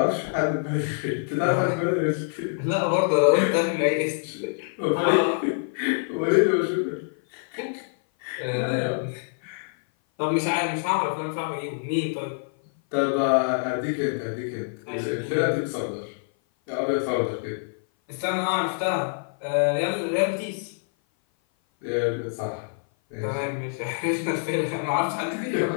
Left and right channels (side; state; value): right; silent; 56 dB below the other